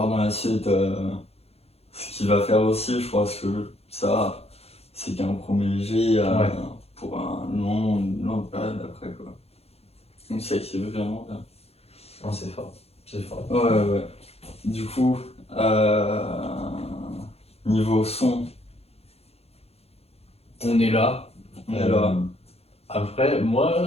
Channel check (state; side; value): late; right; 0.29 ms